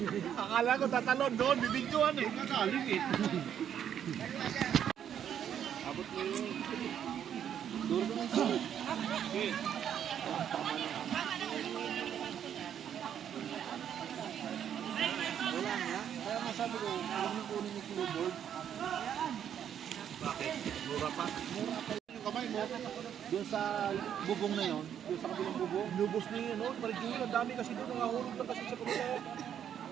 Akala ko tatalon doon, bibidyoan eh. Nakaling eh. Abot mo yun. Duro ko ng sunod. Okay. Wala nga. Kaya nga sabi ko, alam mo kunin yung keyboard. Bakit? Mura pa? Yung kamay mo, doon sa bubong na yon, doon sa kabilang bubong, lubos na yun, no? Marigil, ang dami kasi doon, nangahulog na kasi sa kabila.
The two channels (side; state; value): left; quieter; 9.2 dB